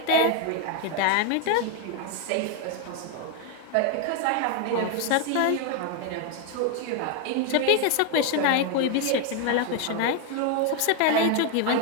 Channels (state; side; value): different; both; correlation 0.01